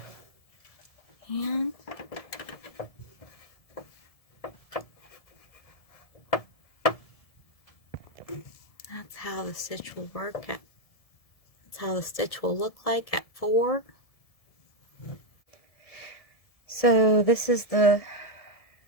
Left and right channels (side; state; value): right; late; 1.7 ms